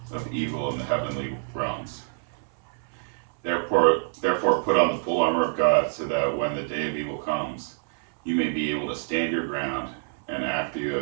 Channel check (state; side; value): silent; left; 57 dB below the other